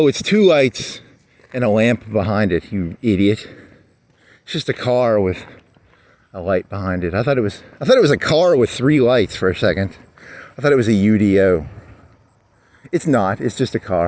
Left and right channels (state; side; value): identical; both; correlation 1.00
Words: it's two lights and a lamp behind it, you idiot. It's just a car with a light behind it. I thought it was a car with three lights for a second. I thought it was a UDO. It's not, it's just a